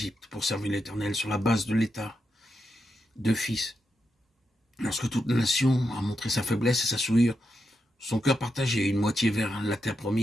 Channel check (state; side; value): normal; both; correlation 0.85